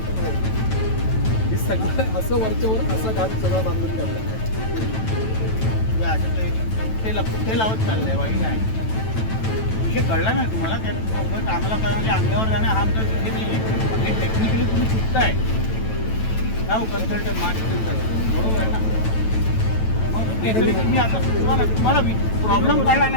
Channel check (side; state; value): right; late; 9.1 ms